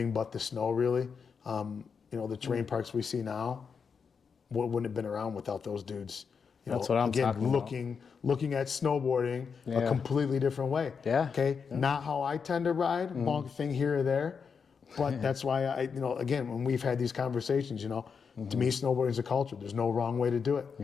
but the snow, really, you know, the terrain parks we see now wouldn't have been around without those dudes. You know, That's what I'm again, talking looking at snowboarding a completely different way. Yeah. Okay, not how I tend to ride, bonk thing here or there, but that's why you know, again, when we've had these conversations, you know, to me, snowboarding is a culture. There's no wrong way to do it.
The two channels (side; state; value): right; quieter; 6.0 dB